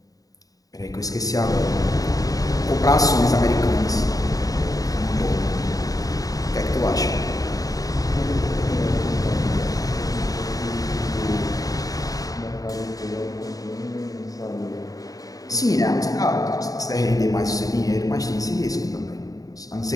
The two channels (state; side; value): late; right; 0.17 ms